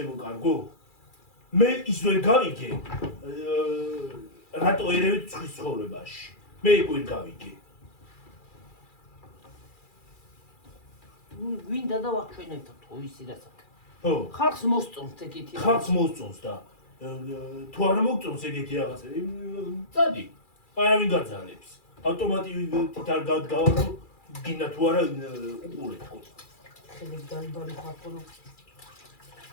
კარგო? მე ის ვერ გავიგე. რატო ერევით ცხრის ცხოვრებაში? მე იქ ვერ გავიგე. გვინდა და ვაჩვენებთ თუ ისი რასაც. ხო. ხალხს მოსწონს ეგეთი. ხალხს მოსწონს და თუ არ მოგწონს ეგეთი რაღაცები, წადი. არავინ გაძალებს. ავტომატურად არ გავარო გინდა თუ არა უყურეთ ხო. ხელი დაიბარი ხალხო.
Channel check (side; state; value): right; late; 2.4 ms